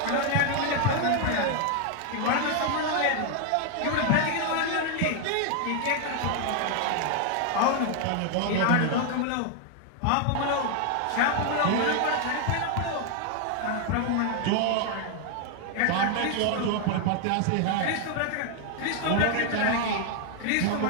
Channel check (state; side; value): different; both; correlation 0.00